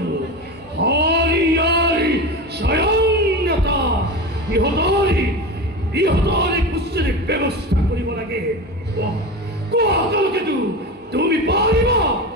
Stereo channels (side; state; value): both; normal; correlation 0.25